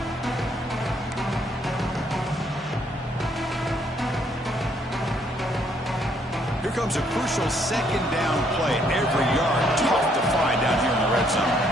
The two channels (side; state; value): both; normal; correlation 0.69